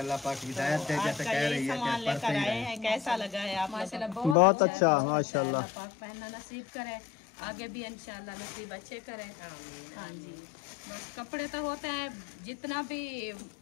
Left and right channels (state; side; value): drops out; right; at 4.4 s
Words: पाक हिदायत दे, जैसे कह रही है कि पढ़ते ही रहें। कैसा लगा है आप? माशाल्लाह बहुत अच्छा, माशाल्लाह। पाक पहनना नसीब करे, आगे भी इंशाल्लाह नसीब अच्छे करें। हाँ जी। बस कपड़े तो होते हैं, जितना भी